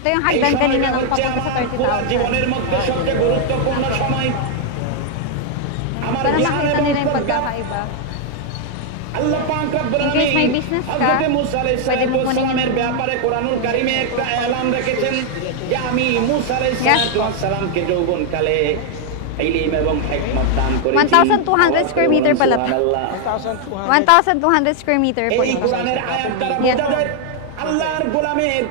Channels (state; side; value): different; both; correlation 0.00